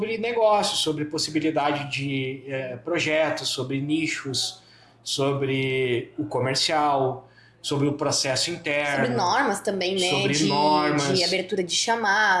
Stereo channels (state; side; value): identical; both; correlation 1.00